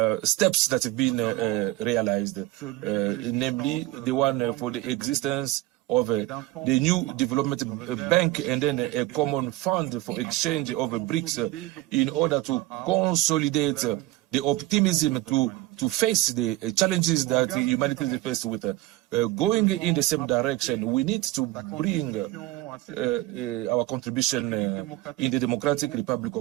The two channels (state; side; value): quieter; left; 17.5 dB